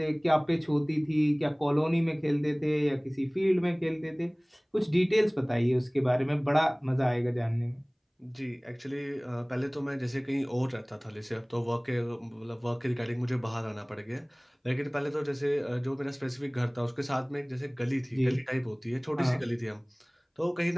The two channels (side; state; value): both; identical; correlation 1.00